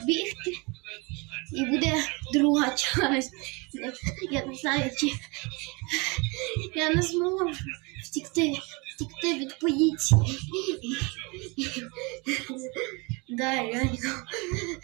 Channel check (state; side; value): quieter; left; 28.4 dB